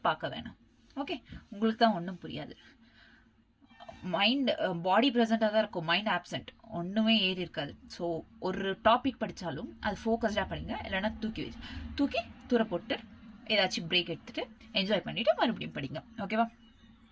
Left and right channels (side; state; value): both; identical; correlation 1.00